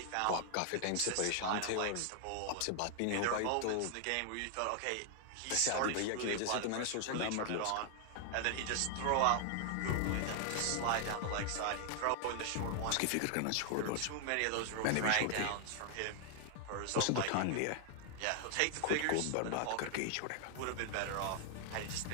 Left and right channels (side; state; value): both; different; correlation 0.00